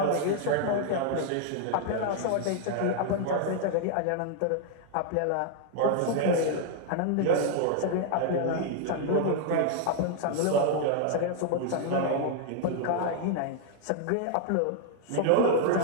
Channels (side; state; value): both; different; correlation 0.00